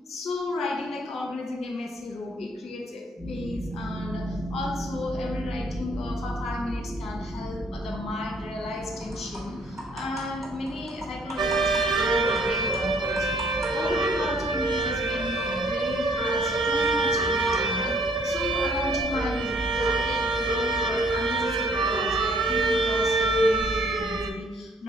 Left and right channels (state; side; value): normal; both; correlation 0.62